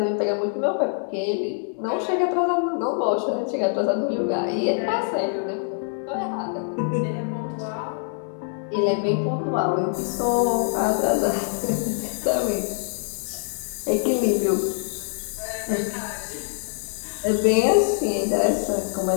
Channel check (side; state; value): right; silent; digital silence